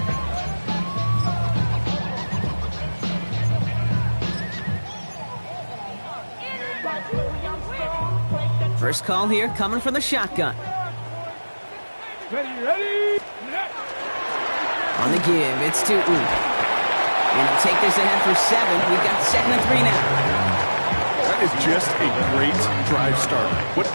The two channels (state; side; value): inverted; both; correlation -1.00